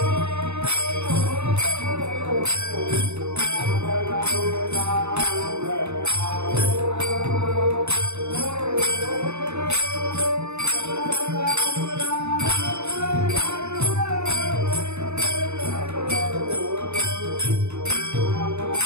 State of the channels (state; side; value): late; left; 0.82 ms